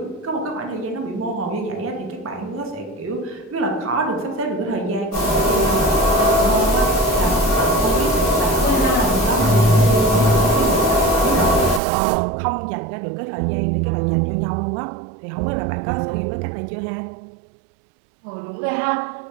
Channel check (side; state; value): left; drops out; at 11.8 s